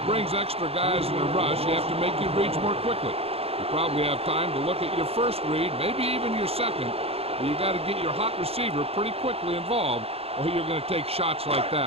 brings extra guys in a rush, you have to make your reads more quickly. You probably have time to look at your first read, maybe even your second, but you got to get your hot receiver pretty quickly involved, or you're going to take shots like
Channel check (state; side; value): late; left; 0.29 ms